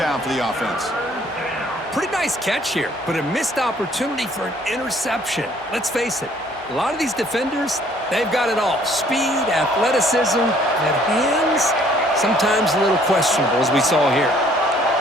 for the offense. Pretty nice catch here, but a missed opportunity for an interception. Let's face it, a lot of these defenders, they've got it all. Speed, athleticism, and hands, sometimes a little questionable, as we saw here.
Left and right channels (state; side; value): normal; both; correlation 0.60